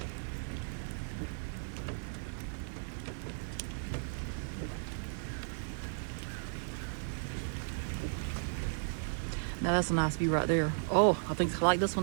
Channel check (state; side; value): silent; left; 54 dB below the other